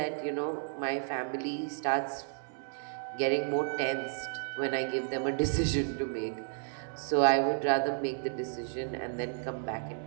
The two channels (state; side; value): silent; left; 56 dB below the other